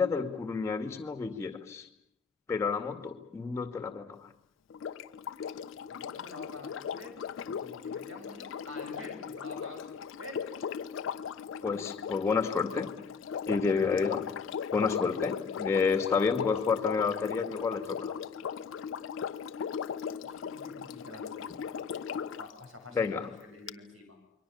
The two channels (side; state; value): right; quieter; 5.2 dB